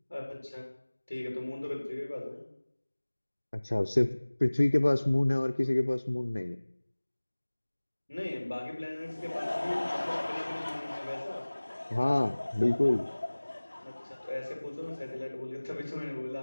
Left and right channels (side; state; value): both; inverted; correlation -1.00